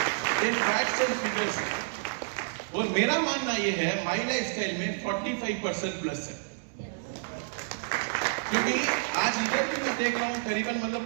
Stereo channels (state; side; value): silent; left; digital silence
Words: In facts and figures. और मेरा मानना ये है, माई लाइफ स्टाइल में 45% प्लस है। क्योंकि आज इधर भी मैं देख रहा हूं, करीबन